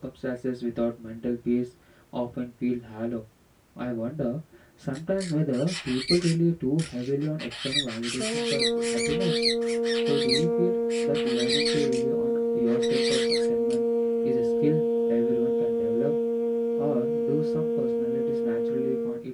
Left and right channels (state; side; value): identical; both; correlation 1.00